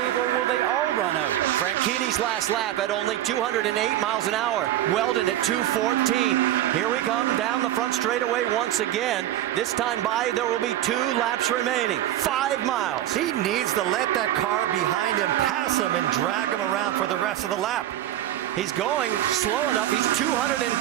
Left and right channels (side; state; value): left; quieter; 13.0 dB